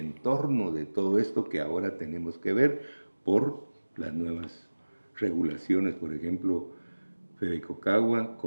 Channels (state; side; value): inverted; both; correlation -1.00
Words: de todo esto que ahora tenemos que ver por las nuevas regulaciones. Por ejemplo, Fedecocagua